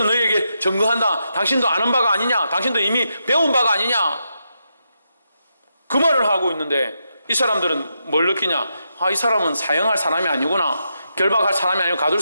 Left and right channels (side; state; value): both; inverted; correlation -0.84